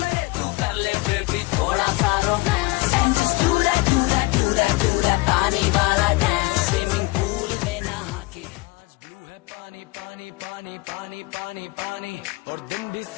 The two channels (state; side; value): quieter; right; 22.8 dB